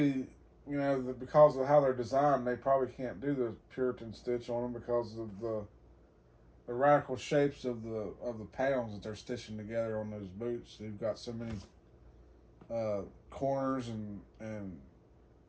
because of how they're designed, they probably can't do the Puritan stitch on them because of the radical shapes of the panels that they're stitching together on those boots. You've got so many corners and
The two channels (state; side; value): identical; both; correlation 1.00